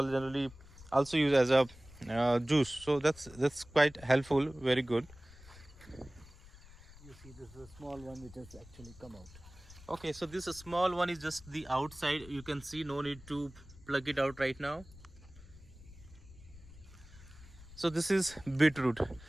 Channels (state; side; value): noise; left; rumble, 20 dB below the sound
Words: generally also use as a juice. So that's quite helpful. Very good. You see, this is a small one which has actually come out. Okay, so this small one is just the outside. You can see, no need to plug it out right now. So this is beetroot.